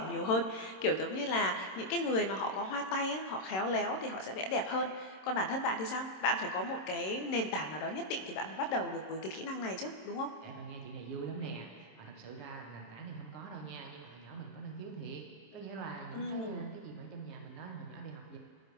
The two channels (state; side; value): late; right; 26 ms